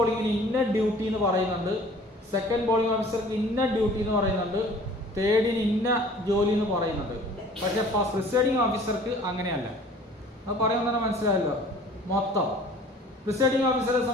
ഇന്ന ഡ്യൂട്ടി എന്ന് പറയുന്നുണ്ട്, സെക്കൻഡ് പോളിംഗ് ഓഫീസർക്ക് ഇന്ന ഡ്യൂട്ടി എന്ന് പറയുന്നുണ്ട്, തേർഡിന് ഇന്ന ജോലി എന്ന് പറയുന്നുണ്ട്. പക്ഷേ പ്രിസൈഡിംഗ് ഓഫീസർക്ക് അങ്ങനെയല്ല. അത് പറയുമ്പോൾ തന്നെ മനസ്സിലായല്ലോ. മൊത്തം പ്രിസൈഡിംഗ് ഓഫീസറെ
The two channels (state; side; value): normal; both; correlation 0.49